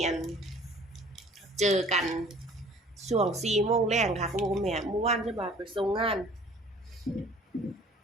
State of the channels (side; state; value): both; normal; correlation 0.51